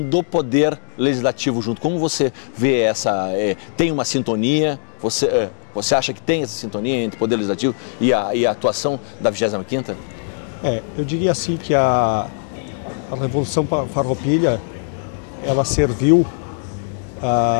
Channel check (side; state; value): right; silent; digital silence